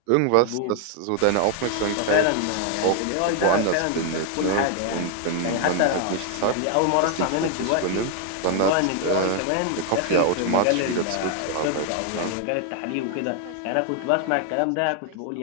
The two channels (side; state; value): both; different; correlation 0.00